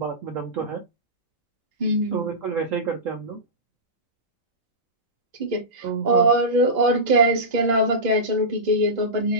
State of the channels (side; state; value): both; normal; correlation -0.18